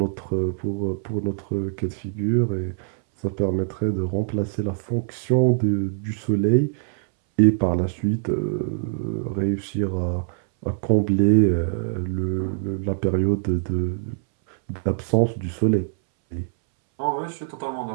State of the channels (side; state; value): left; silent; 63 dB below the other